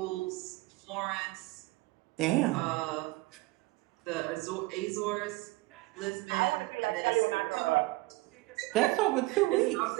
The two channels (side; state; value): left; quieter; 21.5 dB